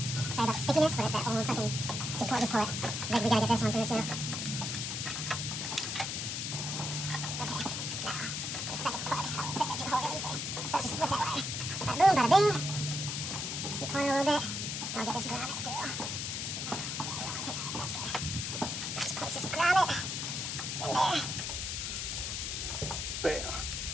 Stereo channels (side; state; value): left; noise; hiss, 2 dB below the sound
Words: Sorry about the stickiness, but it's that old fucking just pull it. Like we gotta get this one through too. Okay, now the second plug. Oh, it fit right through the hole really easily. So it's just with that wire. Bada boom, bada bing. Keep pulling a little bit. And I'll get this grommet through. That's good. Just place this grommet in there. Bam.